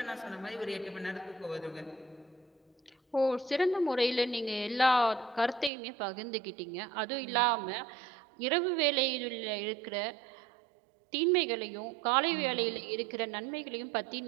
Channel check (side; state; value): left; drops out; at 5.7 s